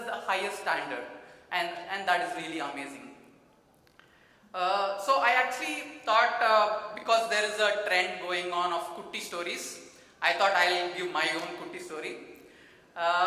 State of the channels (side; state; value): both; identical; correlation 1.00